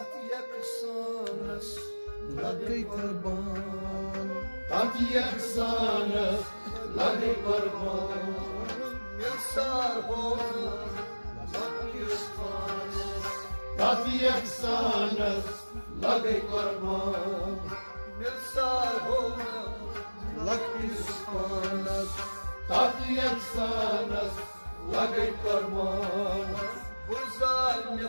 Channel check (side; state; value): both; inverted; correlation -1.00